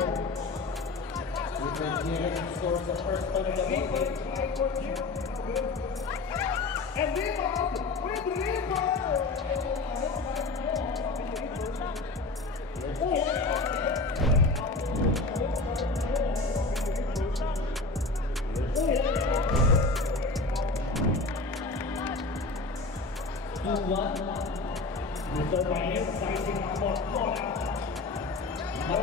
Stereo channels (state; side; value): quieter; right; 3.5 dB